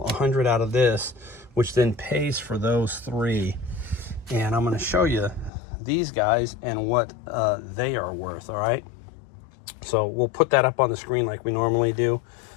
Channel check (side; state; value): right; drops out; at 5.5 s